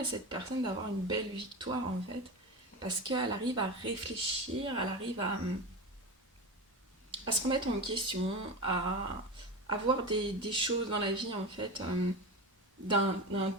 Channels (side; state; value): both; normal; correlation 0.24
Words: cette personne d'avoir une belle victoire en fait, parce qu'elle arrive à réfléchir, elle arrive à se remettre en question, à voir des choses dans la vie en fait d'un